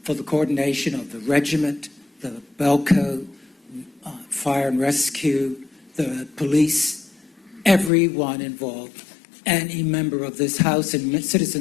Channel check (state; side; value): drops out; right; at 7.9 s